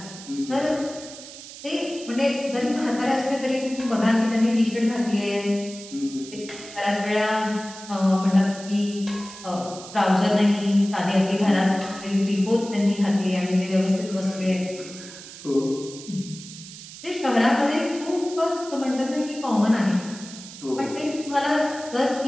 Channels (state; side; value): noise; right; hiss, 15 dB below the sound